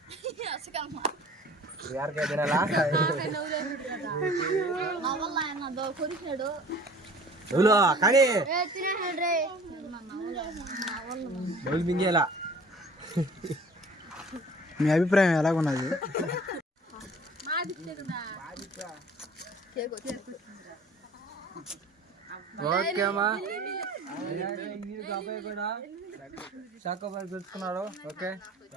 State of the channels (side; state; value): both; normal; correlation 0.47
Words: మింగేలా. మీ అభిప్రాయం ఎలాగున్నది? ఓకే అమ్మా అబ్బాయి కూడా చాకోబార్ తెచ్చుకున్నాడు. Okay